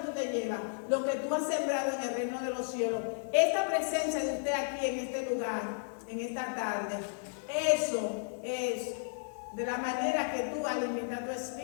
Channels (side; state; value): right; silent; digital silence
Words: te llevas? Lo que tú has sembrado en el reino de los cielos. Esta presencia de usted aquí en este lugar, en esta tarde, eso es de la manera que tú alimentas tu